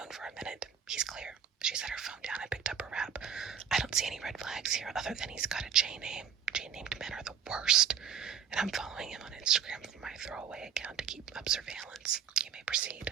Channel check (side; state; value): left; quieter; 8.0 dB